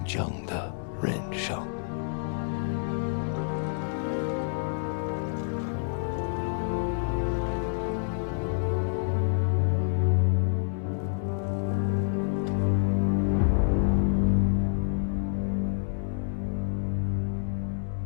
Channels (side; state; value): right; silent; digital silence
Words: 正的人生。